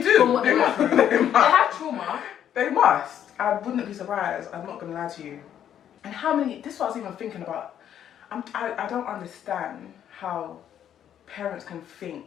do. From what They must. they have trauma. They must. I wouldn't be surprised. I'm not going to lie to you. And how many... This is what I was even thinking about. I don't understand how parents can think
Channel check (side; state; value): right; quieter; 9.9 dB